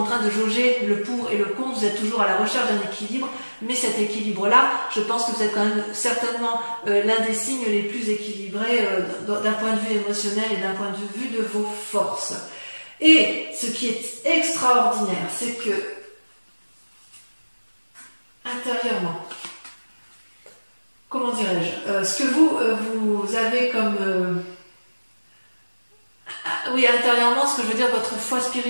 train de jauger le pour et le contre, vous êtes toujours à la recherche d'un équilibre, mais cet équilibre-là, je pense que vous êtes quand même certainement l'un des signes les plus équilibrés d'un point de vue émotionnel et d'un point de vue de vos forces. Et ce qui est extraordinaire, c'est que intérieurement, comment dirais-je, ce que vous avez comme... oui, intérieurement, ce que je veux dire, votre foi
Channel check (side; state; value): both; inverted; correlation -1.00